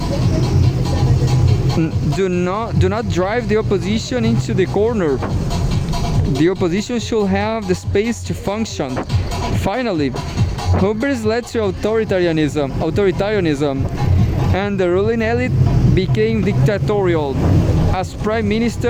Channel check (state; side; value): identical; both; correlation 1.00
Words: do not drive the opposition into the corner. The opposition should have the space to function. Finally, hubris led to authoritarianism, and the ruling elite became dictatorial. As Prime